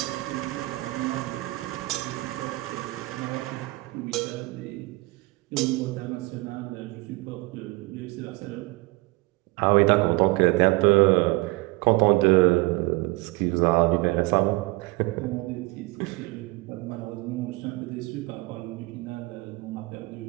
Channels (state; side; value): quieter; left; 22.9 dB